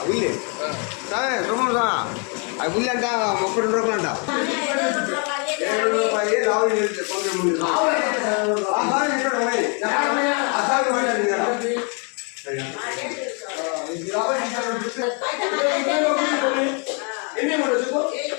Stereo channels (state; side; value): quieter; right; 37.6 dB